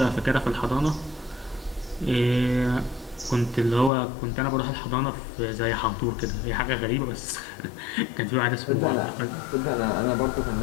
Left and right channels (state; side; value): drops out; right; at 3.9 s